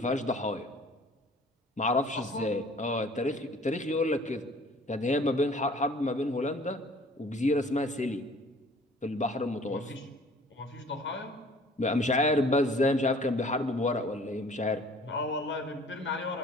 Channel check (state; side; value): normal; both; correlation 0.52